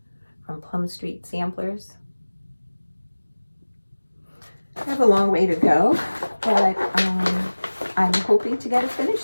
from Plum Street Samplers. I have a long way to go, but I'm hoping to get it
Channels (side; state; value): both; inverted; correlation -1.00